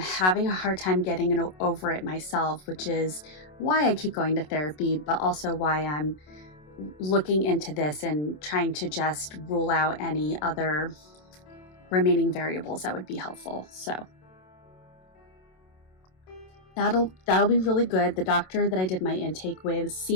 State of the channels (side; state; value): right; late; 27 ms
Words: a hard time getting over it myself, which is why I keep going to therapy, but also why I'm looking into this and trying to just rule out any other remaining variables that would be helpful. So that'll be really good. The doctor that I did my intake with